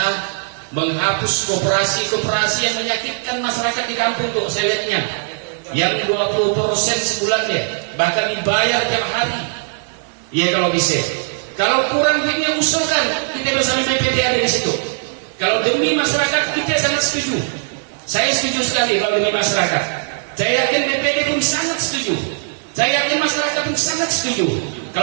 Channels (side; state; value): left; silent; digital silence